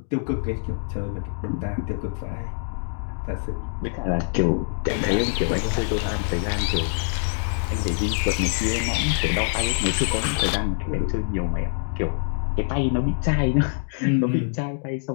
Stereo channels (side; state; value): right; silent; digital silence